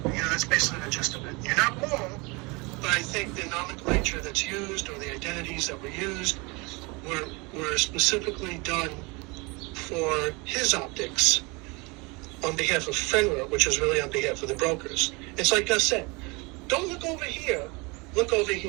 That's basically the gist of it. You're not wrong, but I think the nomenclature that's used or the identities that were used were specifically done for his optics on behalf of FNGR, which is really on behalf of the brokers. It's like Gus said, don't look over here, look over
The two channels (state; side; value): quieter; left; 27.3 dB